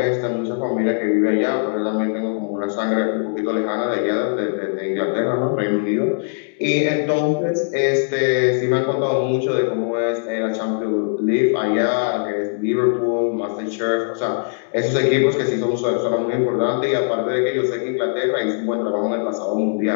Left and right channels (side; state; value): right; silent; digital silence